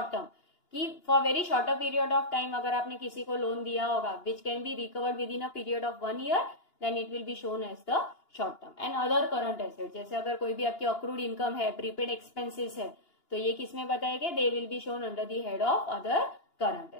term कि for very shorter period of time अगर आपने किसी को लोन दिया होगा which can be recovered within a period of 1 year, then it will be shown as the short term. And other current asset, जैसे अगर कोई भी आपकी अक्रूड इनकम है, प्रीपेड एक्सपेंसेस है, तो ये किसमें बताएंगे? They will be shown under the head of other current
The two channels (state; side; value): late; right; 2.8 ms